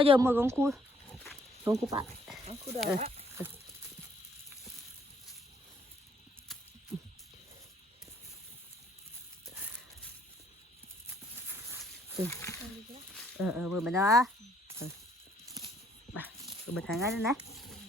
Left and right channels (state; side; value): normal; both; correlation 0.64